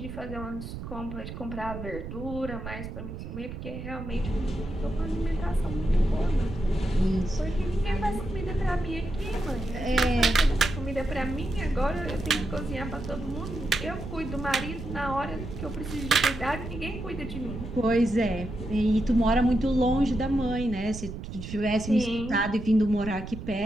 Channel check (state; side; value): noise; right; rumble, 9 dB below the sound